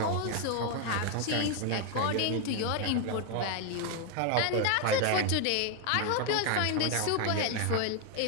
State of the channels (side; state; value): both; different; correlation 0.01